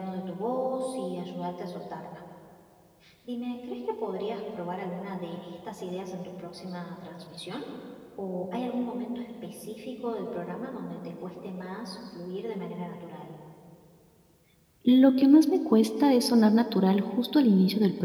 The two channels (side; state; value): both; identical; correlation 1.00